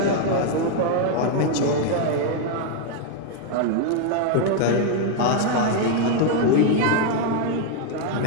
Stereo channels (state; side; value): different; both; correlation 0.00